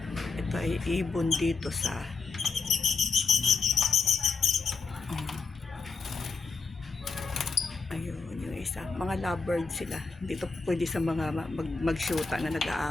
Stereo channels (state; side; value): quieter; right; 4.6 dB